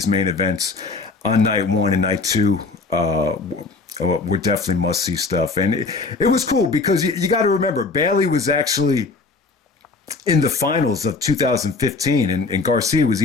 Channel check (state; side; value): quieter; right; 4.1 dB